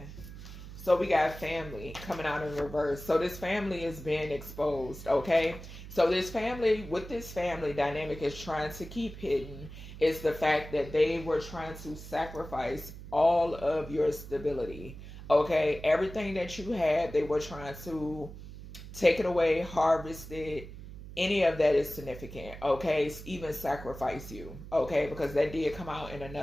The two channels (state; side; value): noise; right; hum, 13 dB below the sound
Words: So we got family coming out in reverse. So this family is being exposed. Okay. So this family, what this family dynamic is trying to keep hidden is the fact that they were trying to sacrifice all of your stability. Okay. Everything that you had, they were trying to take it away, harvest it. Any of that is significant, okay? Even sacrifice you, okay? Because that did come out in